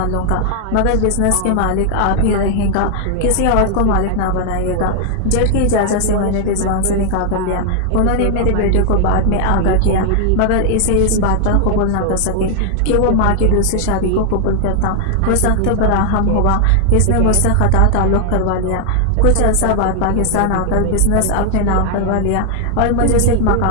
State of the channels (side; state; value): both; different; correlation 0.00